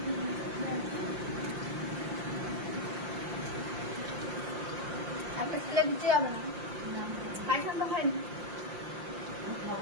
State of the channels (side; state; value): left; late; 5.7 ms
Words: আপনি ফেলে দিতে যাবে না খাইছেন তো খাইনি